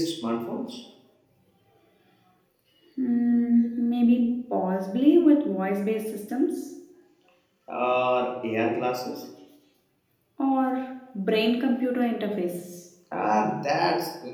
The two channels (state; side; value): identical; both; correlation 1.00